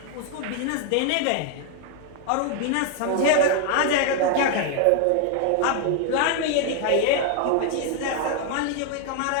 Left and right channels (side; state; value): both; different; correlation 0.00